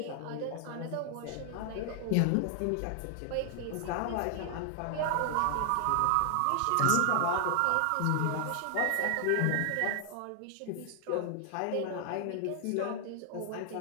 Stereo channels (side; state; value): both; different; correlation 0.00